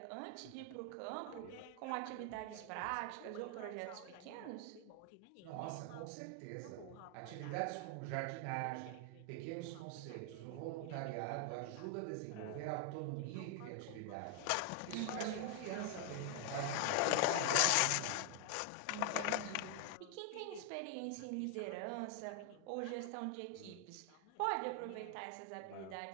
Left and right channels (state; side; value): different; both; correlation 0.00